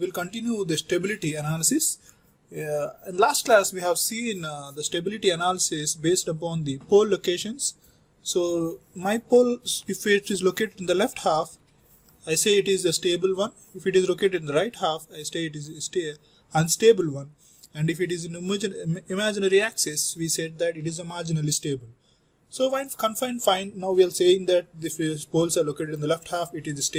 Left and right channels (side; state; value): both; identical; correlation 1.00